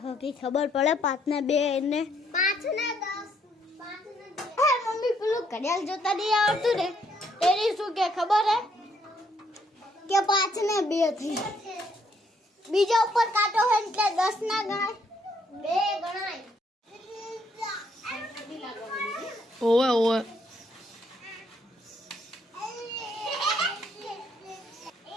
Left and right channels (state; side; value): normal; both; correlation 0.70